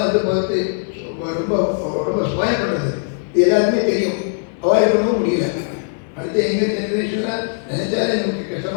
வந்து பார்த்து ரொம்ப ரொம்ப ஸ்பாயில் பண்ணுறது. இது எல்லாருக்குமே தெரியும். அவாய்ட் பண்ணவும் முடியல. அடுத்த எங்கள் ஜென்ரேஷனில் நினைச்சாலே நமக்கு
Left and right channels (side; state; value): right; silent; 65 dB below the other